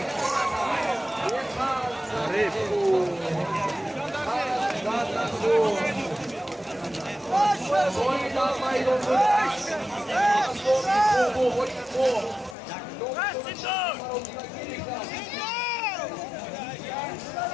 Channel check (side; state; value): right; drops out; at 12.6 s